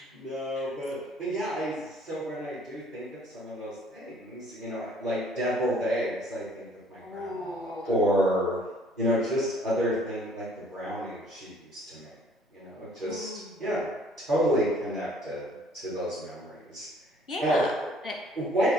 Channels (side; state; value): both; normal; correlation 0.58